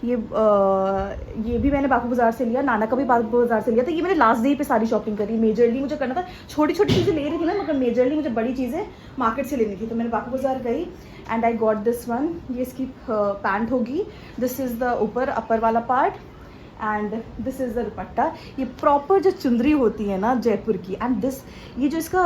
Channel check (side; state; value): both; identical; correlation 1.00